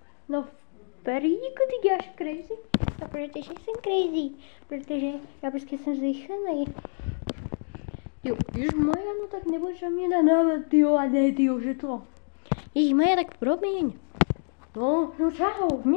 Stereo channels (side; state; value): right; silent; digital silence